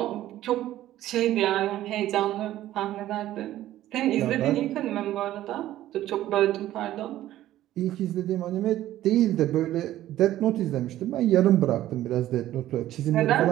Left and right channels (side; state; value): left; quieter; 13.8 dB